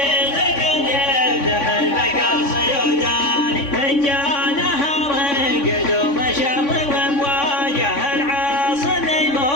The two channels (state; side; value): late; right; 3.5 ms